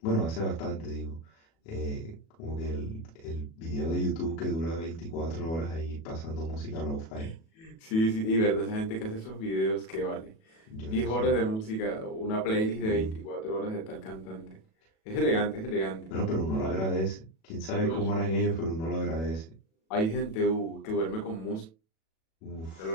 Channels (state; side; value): late; right; 37 ms